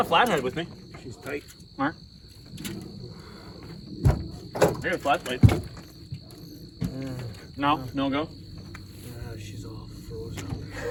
a flathead with me. She's tight. Mark. I got a flat plate. No, no go. she's all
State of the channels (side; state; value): both; identical; correlation 1.00